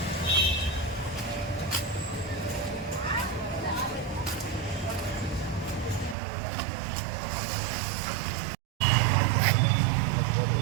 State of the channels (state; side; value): drops out; left; at 6.2 s